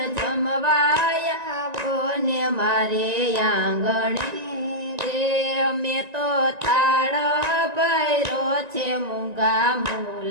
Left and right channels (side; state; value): left; late; 1.9 ms